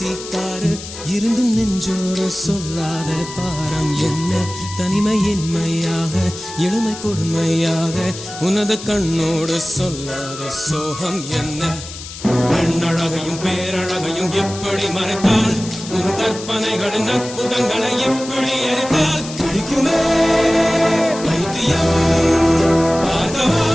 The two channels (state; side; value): noise; left; hiss, 12 dB below the sound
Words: காரு இருந்தும் நெஞ்சோடு சொல்லாத பாரம் என்ன தனிமை இனிமையாக எளிமை கொடுமையாக உனது கண்ணோடு சொல்லாத சோகம் என்ன பெண்ணழகையும் பேரழகையும் எப்படி மறைத்தால் உன் கற்பனைகளின் அற்புதங்களை எப்படி எரித்தால் பிடிக்குமே பைத்தியம் பார்க்கவா